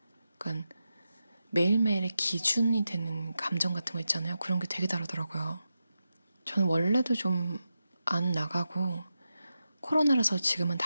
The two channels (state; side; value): inverted; both; correlation -0.89